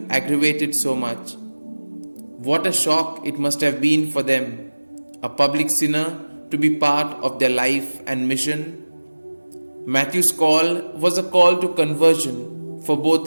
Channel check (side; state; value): both; inverted; correlation -1.00